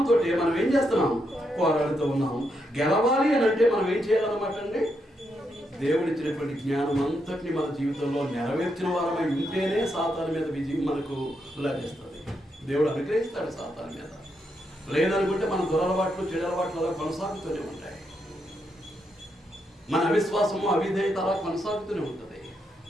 మనం ఏం చేస్తున్నాం? పోరాడుతూ ఉన్నాం. గెలవాలి అని అంటే మనం ఏం చేయాలన్నమాట అండి? దేవుడిచ్చినటువంటి జ్ఞానం అంతటిని మన జీవితంలో నెరవేర్చిన వారమై ఉంటేనే సాతాను మీద విజయం మనకు లభిస్తుంది. దేవుడు అనుగ్రహిస్తాడు సాతాను మీద. లేదనుకుంటే మన దురలవాట్లు, చెడలవాట్లు అలా కొనసాగుతూనే ఉంటాయి. మన అవిశ్వాసము, అవిధేయత అలా కొనసాగుతూనే ఉంటుంది.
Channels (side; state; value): both; normal; correlation 0.81